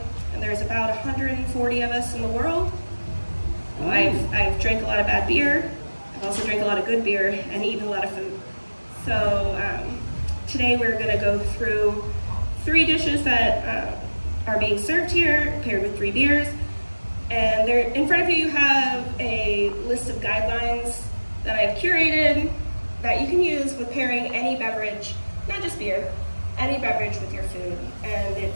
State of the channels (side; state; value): both; inverted; correlation -1.00